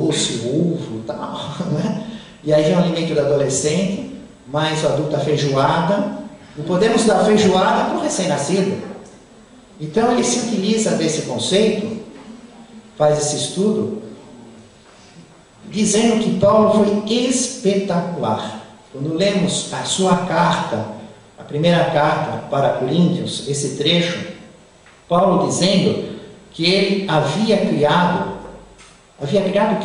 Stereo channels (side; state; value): both; identical; correlation 1.00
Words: ovo e tal, né? E aí vem o alimento do adolescente, mais o adulto, a feijoada. Não podemos dar feijoada para o recém-nascido. Então ele se utiliza desse conceito, faz esse estudo, dizendo que Paulo foi espetacular. Quando lemos a sua carta, a primeira carta para Coríntios, esse trecho, Paulo dizendo que ele havia criado